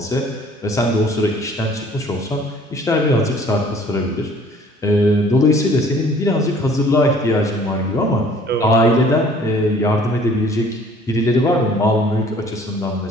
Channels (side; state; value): both; normal; correlation 0.54